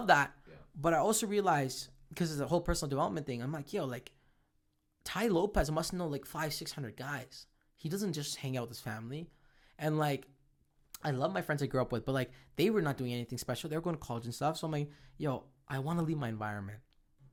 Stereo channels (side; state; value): both; identical; correlation 1.00